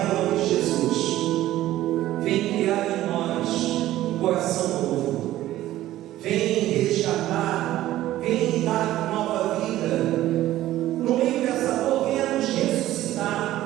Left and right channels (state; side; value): quieter; left; 14.6 dB